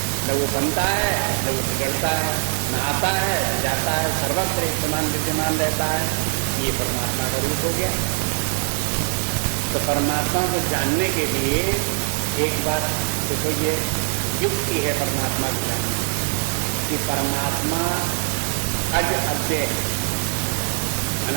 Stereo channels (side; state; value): left; silent; 59 dB below the other